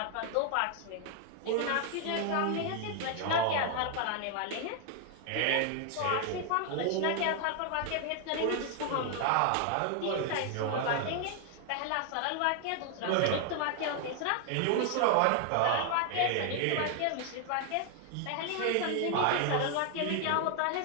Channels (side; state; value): both; different; correlation 0.00